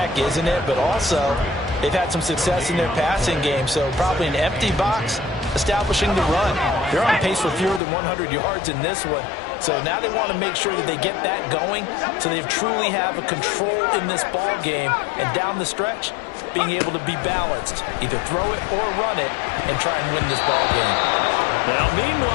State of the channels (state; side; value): drops out; right; at 7.8 s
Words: isn't it? But also, they've had some success in their passing game, so probably an empty box establishing the run. They're on pace for fewer than 100 yards in this one. So now they want to make sure that they get that going so they truly have a control in this ball game. And down the stretch, being able to be balanced. Either throw it or run it and try and win this ball game. Now,